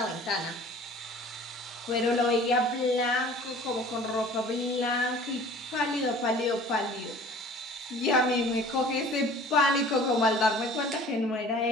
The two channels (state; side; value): normal; both; correlation 0.47